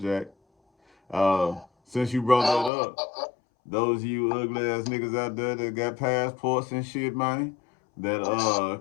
Since you brought that up, those of you ugly ass niggas out there that got passports and shit, man, that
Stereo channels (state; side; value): drops out; right; at 2.7 s